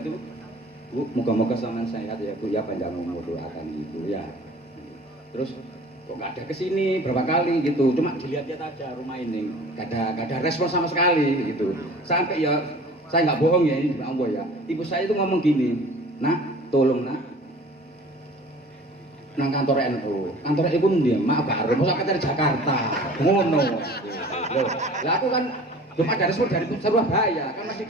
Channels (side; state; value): both; normal; correlation 0.45